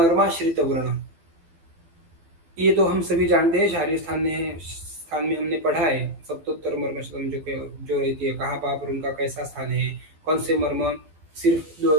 वर्ण, ये तो हम सभी जानते हैं, शारीरिक स्थान में हमने पढ़ा है, सप्तोत्तर मर्मशतम जो रहती है, कहाँ पाप और उनका कैसा स्थान है, कौन से मर्म सिर्फ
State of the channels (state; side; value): late; left; 12 ms